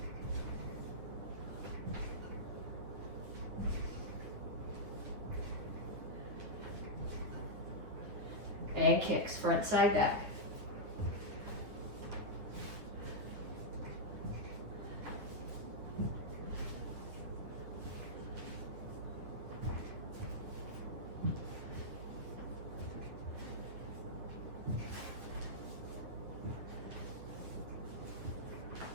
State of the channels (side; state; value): left; late; 9.8 ms